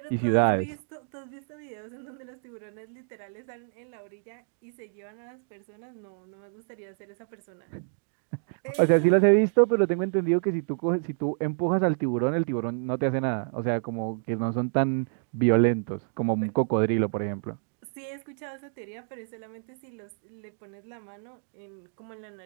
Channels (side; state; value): left; silent; digital silence